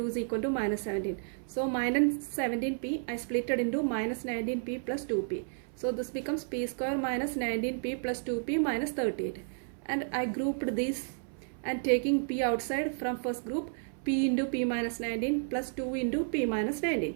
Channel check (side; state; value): left; silent; 57 dB below the other